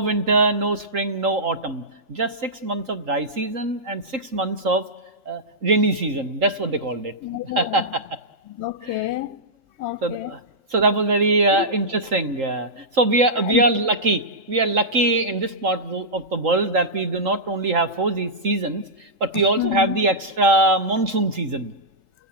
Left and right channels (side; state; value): left; late; 3.8 ms